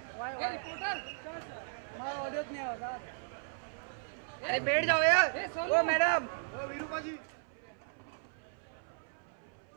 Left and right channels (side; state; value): left; silent; 54 dB below the other